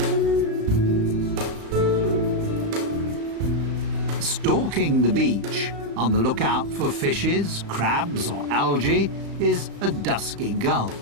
Stalking the beach, on the lookout for fishes, crabs or algae, is a dusky gull.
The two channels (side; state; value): left; late; 35 ms